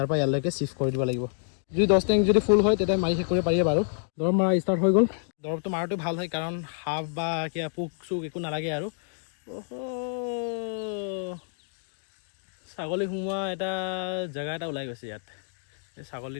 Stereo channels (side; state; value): right; silent; digital silence